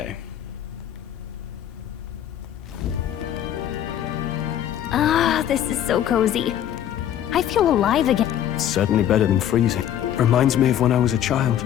Ah, this is so cozy. I feel alive again. It's certainly better than freezing. Reminds me of when I was a child.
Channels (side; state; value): right; quieter; 10.7 dB